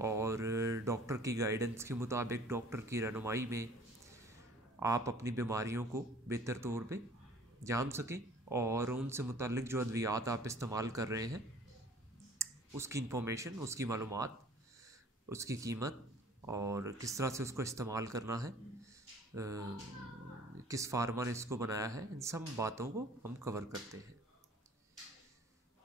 और डॉक्टर की गाइडेंस के मुताबिक, डॉक्टर की रहनुमाई में आप अपनी बीमारियों को बेहतर तौर पे जान सकें और उनसे मुताल्लिक़ जो अद्वियात आप इस्तेमाल कर रहे हैं उसकी इंफॉर्मेशन, उसकी मालूमात, उसकी कीमत और किस तरह से उसको इस्तेमाल करना है, किस फार्मा ने इसको बनाया है, इन सब बातों को हम कवर करते हैं।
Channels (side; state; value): both; normal; correlation 0.51